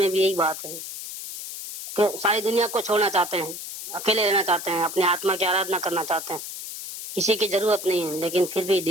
भी यही बात है कि सारी दुनिया को छोड़ना चाहते हैं, अकेले रहना चाहते हैं, अपने आत्मा की आराधना करना चाहते हैं, किसी की जरूरत नहीं है, लेकिन फिर भी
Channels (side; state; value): left; noise; hiss, 9 dB below the sound